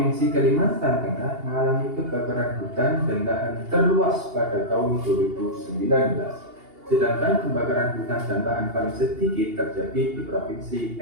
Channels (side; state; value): left; late; 2.8 ms